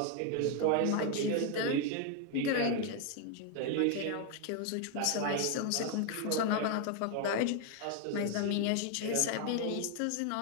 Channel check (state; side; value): different; both; correlation 0.01